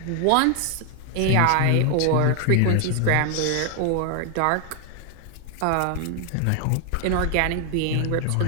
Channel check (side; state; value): both; different; correlation 0.00